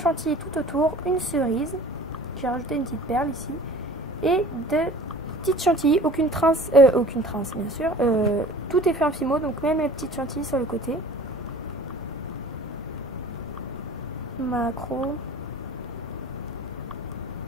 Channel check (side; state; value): both; normal; correlation 0.44